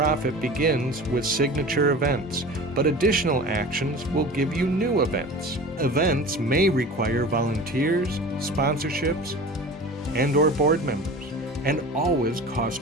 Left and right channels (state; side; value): normal; both; correlation 0.37